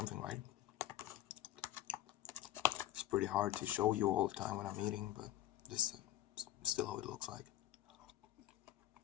right. It's pretty hard to show you all the time when I'm eating, but this is still how it looks like.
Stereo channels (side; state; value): right; quieter; 13.7 dB